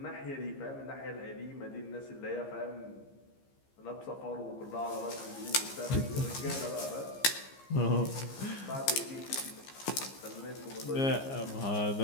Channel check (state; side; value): late; right; 15 ms